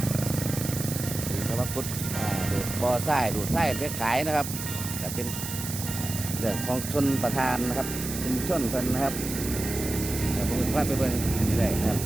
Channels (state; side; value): noise; right; hiss, 7 dB below the sound